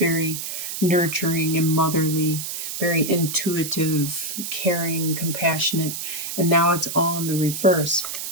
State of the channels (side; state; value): right; noise; hiss, 6 dB below the sound